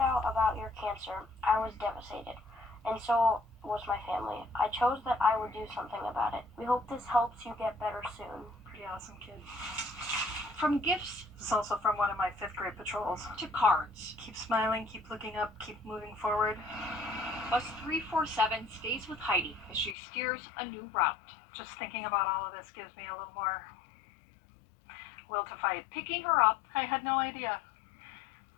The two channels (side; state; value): right; drops out; at 20.0 s